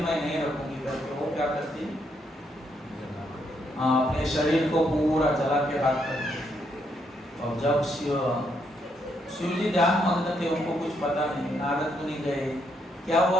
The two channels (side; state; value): both; normal; correlation 0.75